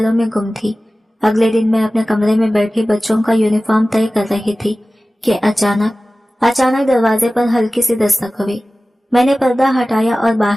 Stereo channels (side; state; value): both; normal; correlation 0.96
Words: में गुम थी। अगले दिन मैं अपने कमरे में बैठी बच्चों का यूनिफॉर्म तय कर रही थी कि अचानक दरवाजे पर हल्की सी दस्तक हुई। मैंने पर्दा हटाया और